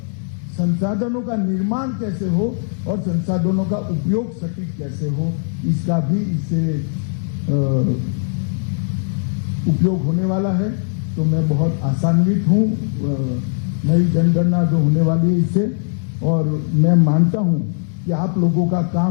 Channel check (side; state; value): right; silent; 66 dB below the other